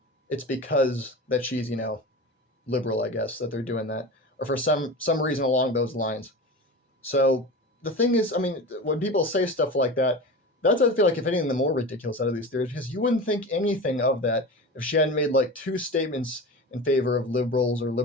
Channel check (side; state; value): both; normal; correlation 0.29